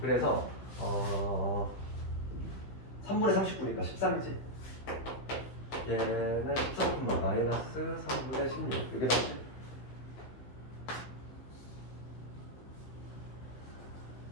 3분의 39니까 13이지. 얘는 13, 마이너스 3분의 16. 이게 나오지?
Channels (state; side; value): late; right; 15 ms